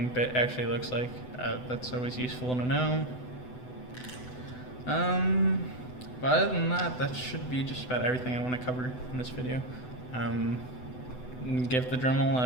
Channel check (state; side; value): late; right; 8.0 ms